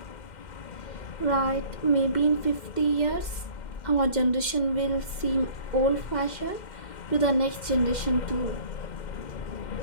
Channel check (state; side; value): late; right; 2.1 ms